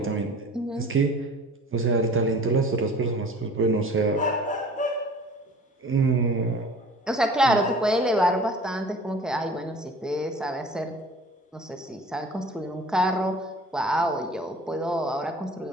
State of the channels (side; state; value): both; normal; correlation 0.46